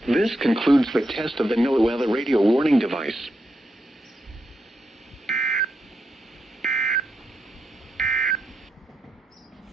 This concludes the test of the NOAA Weather Radio Warning Device.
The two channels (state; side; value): normal; both; correlation 0.84